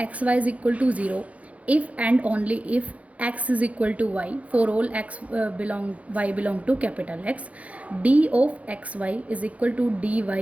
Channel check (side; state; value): left; late; 0.066 ms